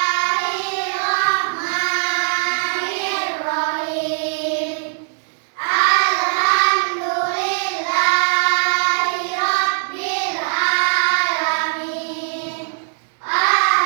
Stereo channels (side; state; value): left; silent; 63 dB below the other